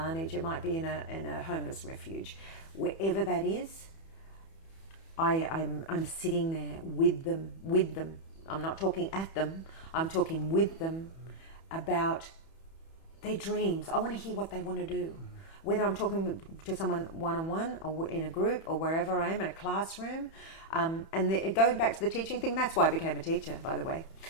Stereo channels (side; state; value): right; late; 31 ms